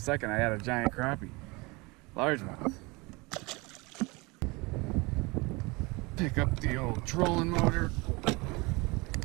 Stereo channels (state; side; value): quieter; left; 25.6 dB